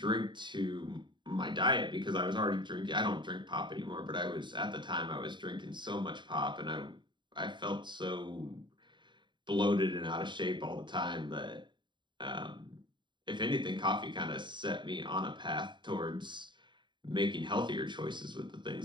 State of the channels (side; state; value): left; late; 0.23 ms